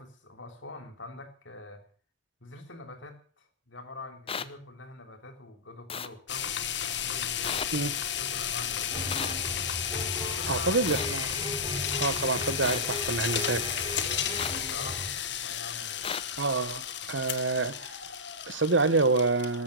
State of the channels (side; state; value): both; normal; correlation -0.12